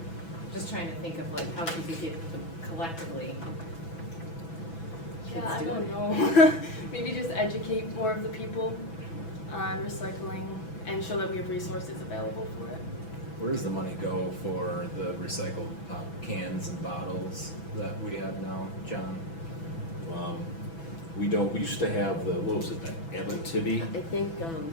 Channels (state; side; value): late; right; 6.0 ms